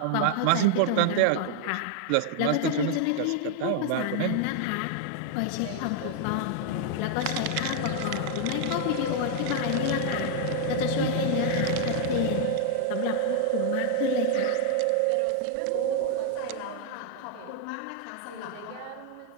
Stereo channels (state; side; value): different; both; correlation 0.00